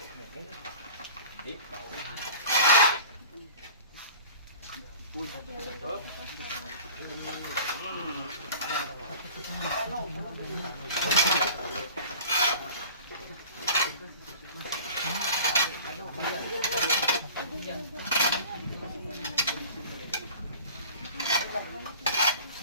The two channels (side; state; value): both; inverted; correlation -0.42